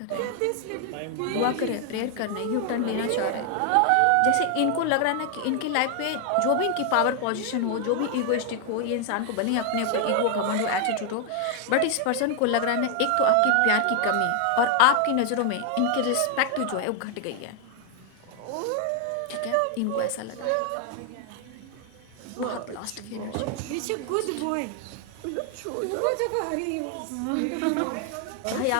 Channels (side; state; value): both; different; correlation 0.00